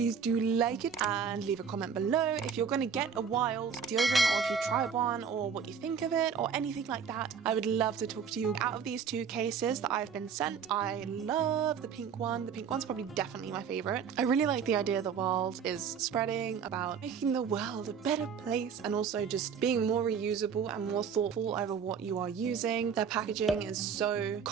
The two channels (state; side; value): quieter; left; 6.8 dB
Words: do like it and leave a comment below if you're gonna get a Wild deodorant, or if you tried one, or what you think of it, or anything like that. I would love to talk to you. Out of these two cases that I've been sent, I love the pink one. The pink one's probably definitely my favorite. I really like the idea that Wild is spreading about making the world a better place, and also just being more reusable and more thoughtful over what you are using. Their packaging is so